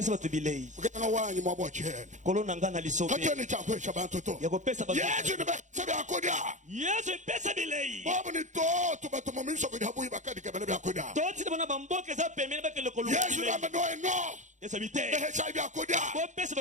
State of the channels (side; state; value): left; late; 0.35 ms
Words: bato bilei Ukana wanyi mwa bochele. kolo na ngana lisobe Katoni chakwesha bantu to. yako pesa bato Yesu ni bese byakudia. yesu pesa bilei Bobu ni to batu mumiso kudi habuyi bakadi kebele byakudia. toti na bana bamboke za pemene bakele kolo Yesu namba no. yesu bite Behesha byakudia. bo pesa